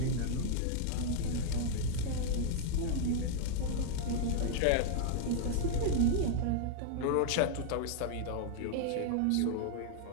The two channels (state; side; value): different; both; correlation -0.01